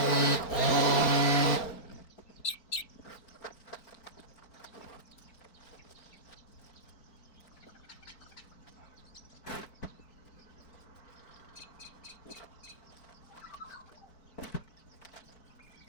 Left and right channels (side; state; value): right; late; 4.6 ms